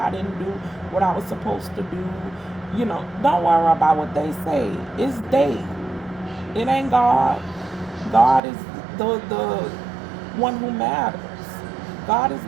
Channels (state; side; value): drops out; left; at 8.4 s